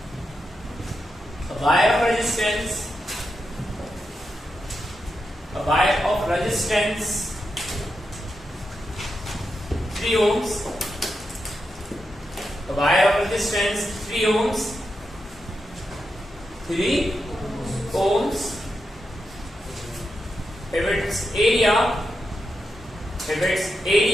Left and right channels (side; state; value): both; normal; correlation 0.87